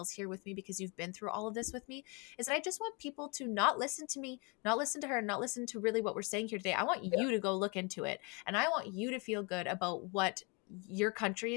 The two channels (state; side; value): quieter; right; 31.4 dB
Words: here with me because you've been through all of this with me, is that I just want people to not listen to me, not listen to her, not listen to really what we're saying here today. I want yeah. you to go look into it. And I want you to feel good about what your country